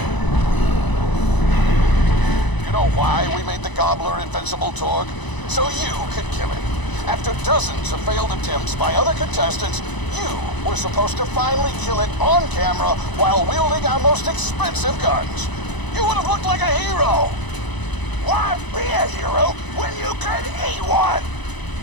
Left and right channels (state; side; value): late; right; 1.0 ms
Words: You know why we made the Gobbler invincible, Torg? So you could kill him. After After dozens of failed attempts by other contestants, you were supposed to finally kill it on camera while wielding our most expensive guns. You would have looked like a hero. Why be a hero when you could eat one?